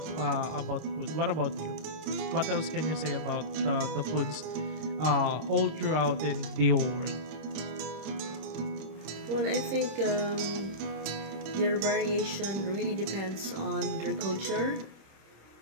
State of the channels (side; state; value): left; late; 26 ms